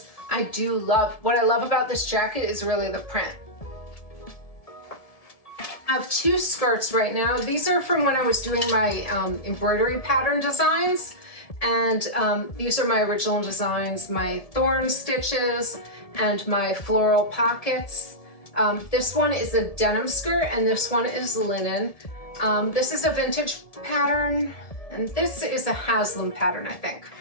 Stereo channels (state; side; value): late; right; 1.7 ms